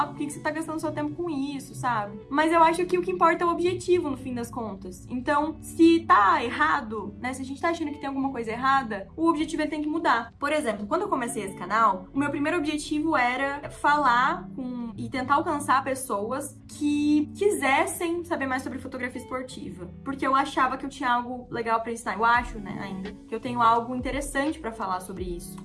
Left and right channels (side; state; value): both; identical; correlation 1.00